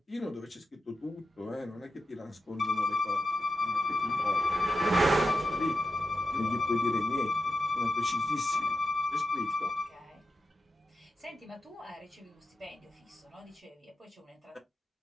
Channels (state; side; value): normal; both; correlation 0.89